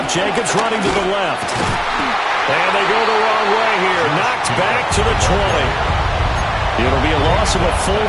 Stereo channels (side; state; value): both; identical; correlation 1.00